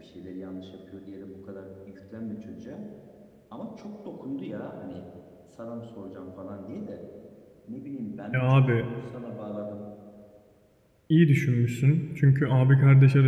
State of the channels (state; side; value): identical; both; correlation 1.00